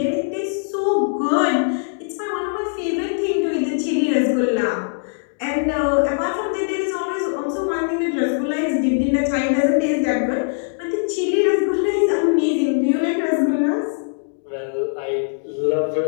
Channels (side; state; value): right; silent; digital silence